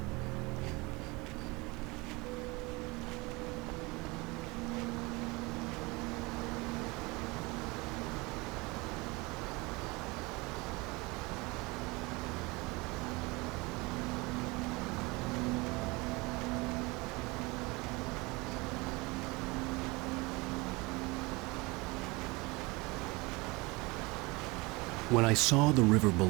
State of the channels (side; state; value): left; quieter; 24.8 dB